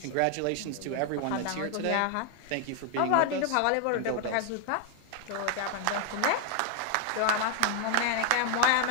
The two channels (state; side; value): different; both; correlation 0.00